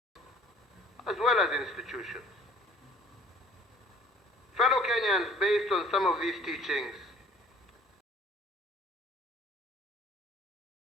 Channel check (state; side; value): normal; both; correlation 0.53